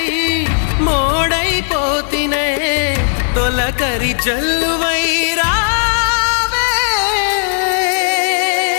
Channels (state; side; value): silent; right; 67 dB below the other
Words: మోడైపోతినే, తొలకరి జల్లువై రావే.